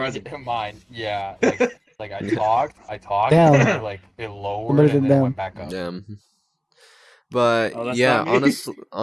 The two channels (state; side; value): identical; both; correlation 1.00